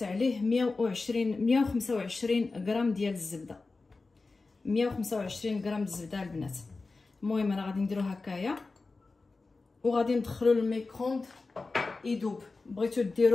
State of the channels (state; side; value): quieter; right; 3.8 dB